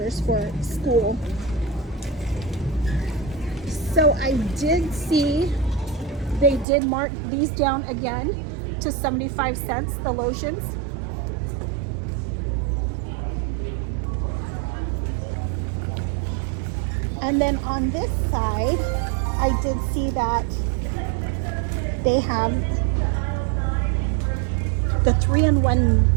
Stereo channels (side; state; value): left; drops out; at 6.7 s